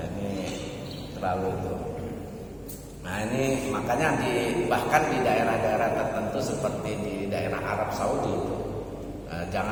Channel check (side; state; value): both; identical; correlation 1.00